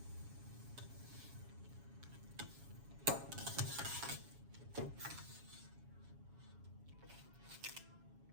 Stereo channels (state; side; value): late; left; 7.2 ms